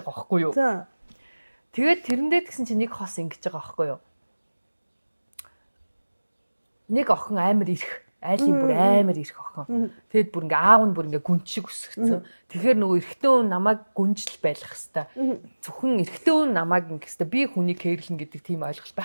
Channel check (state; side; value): inverted; both; correlation -1.00